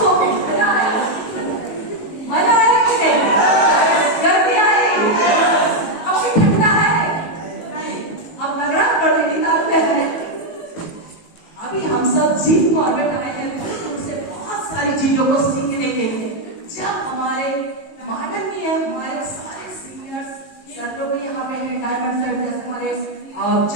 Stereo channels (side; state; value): right; late; 19 ms